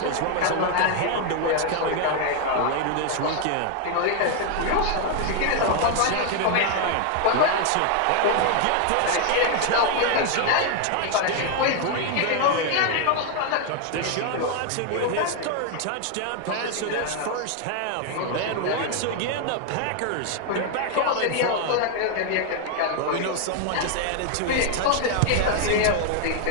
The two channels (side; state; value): both; different; correlation 0.00